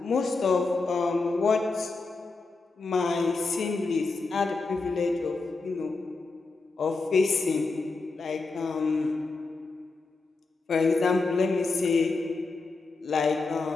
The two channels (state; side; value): quieter; right; 3.8 dB